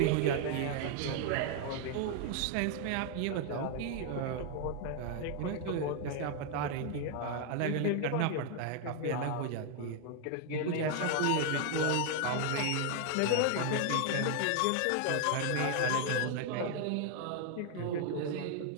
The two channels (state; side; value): different; both; correlation 0.00